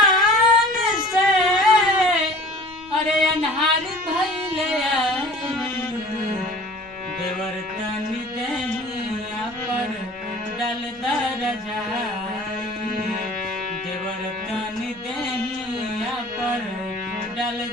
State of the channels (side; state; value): right; noise; rumble, 28 dB below the sound